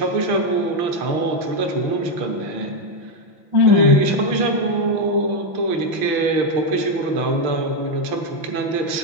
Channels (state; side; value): late; left; 5.9 ms